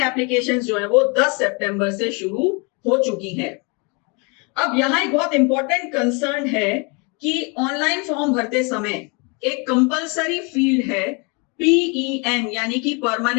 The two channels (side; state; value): right; quieter; 32.0 dB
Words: एप्लीकेशंस जो है वो 10 सितंबर से शुरू हो चुकी हैं। अब यहाँ एक बहुत इंपॉर्टेंट कंसर्न है कि ऑनलाइन फॉर्म भरते समय एक कंपलसरी फील्ड है PEN यानी कि